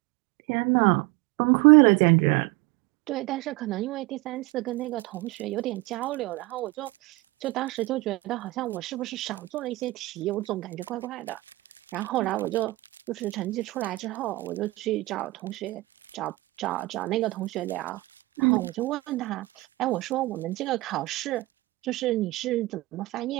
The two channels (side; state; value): left; quieter; 20.7 dB